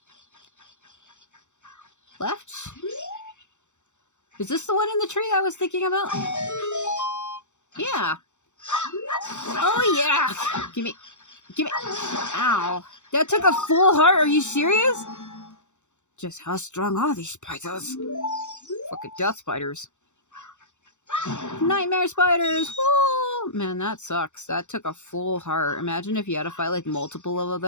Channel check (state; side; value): late; right; 0.84 ms